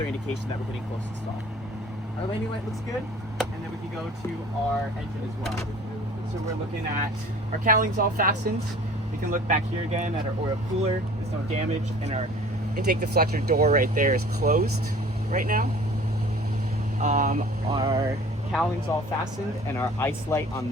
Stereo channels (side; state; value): both; normal; correlation 0.47